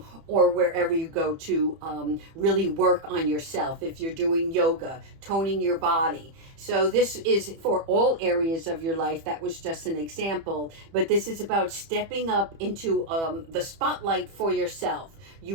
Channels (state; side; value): late; left; 30 ms